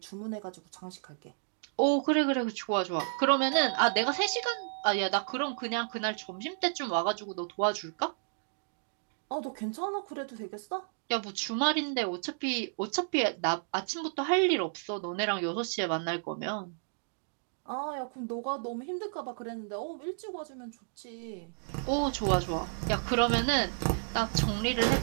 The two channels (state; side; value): silent; left; digital silence